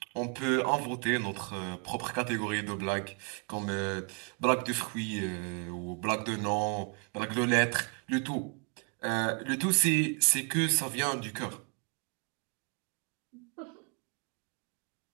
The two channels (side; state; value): left; quieter; 36.5 dB